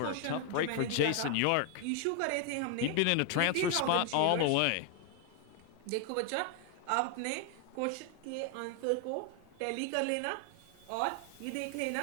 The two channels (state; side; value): different; both; correlation 0.00